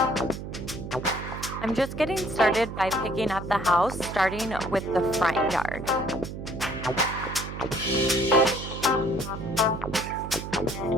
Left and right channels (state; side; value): noise; right; hum, 8 dB below the sound